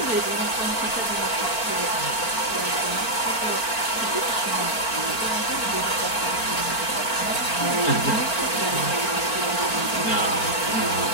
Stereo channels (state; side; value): late; right; 4.4 ms